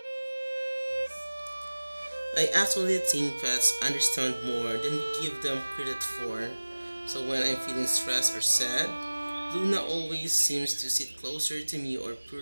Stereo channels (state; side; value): inverted; both; correlation -1.00